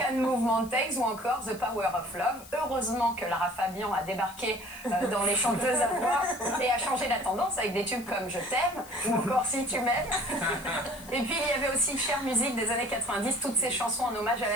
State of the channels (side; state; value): left; noise; hiss, 19 dB below the sound